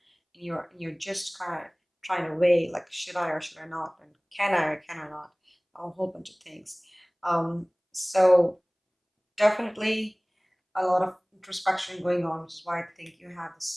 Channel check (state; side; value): identical; both; correlation 1.00